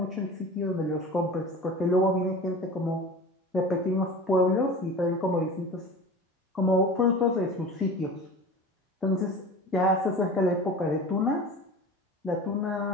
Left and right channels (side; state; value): both; normal; correlation 0.36